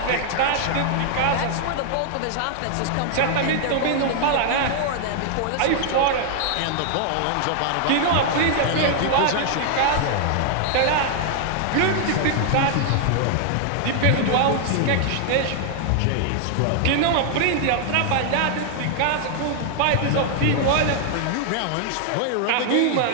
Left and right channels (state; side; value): different; both; correlation 0.00